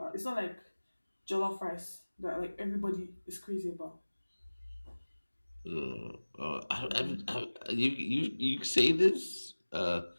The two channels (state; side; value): inverted; both; correlation -1.00